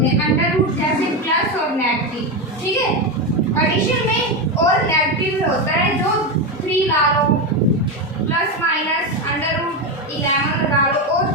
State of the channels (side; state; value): both; normal; correlation 0.12